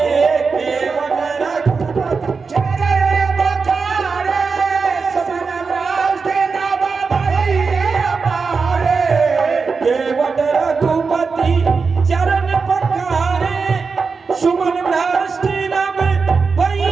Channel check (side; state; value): left; quieter; 4.9 dB